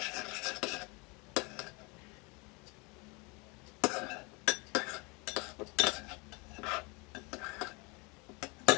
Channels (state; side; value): quieter; right; 28.5 dB